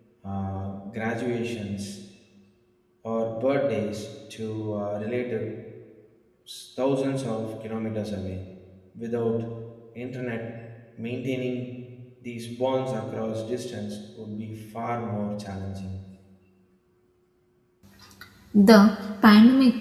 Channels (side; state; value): both; identical; correlation 1.00